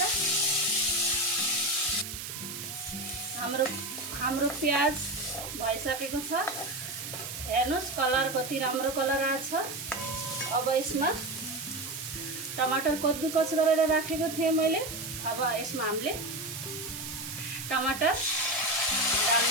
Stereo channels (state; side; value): noise; right; hiss, 8 dB below the sound